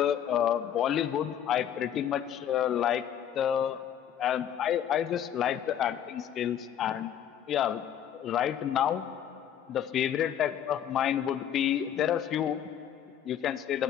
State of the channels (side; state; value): right; quieter; 9.8 dB